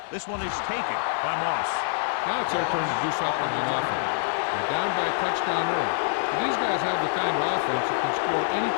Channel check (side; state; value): right; silent; digital silence